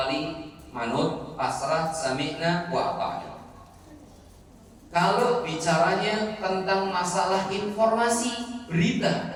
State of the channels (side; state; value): both; identical; correlation 1.00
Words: manut, pasrah, sami'na wa ata'na. Kalau bicaranya tentang masalah informasi, berita,